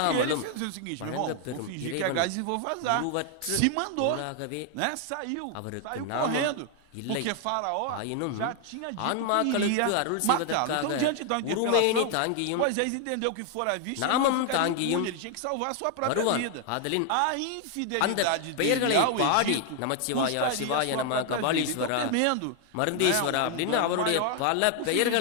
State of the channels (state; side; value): different; both; correlation 0.00